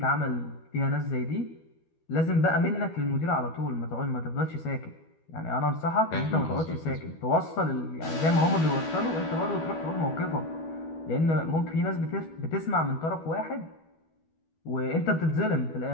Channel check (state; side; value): late; right; 12 ms